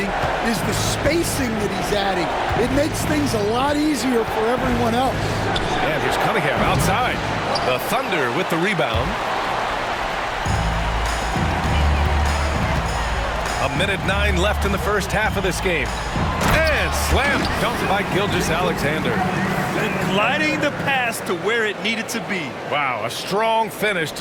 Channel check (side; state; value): both; identical; correlation 1.00